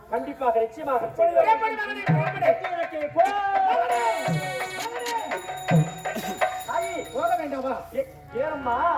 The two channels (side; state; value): both; identical; correlation 1.00